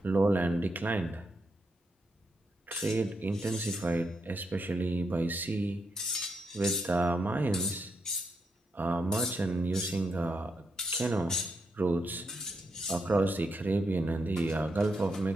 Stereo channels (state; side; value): normal; both; correlation 0.82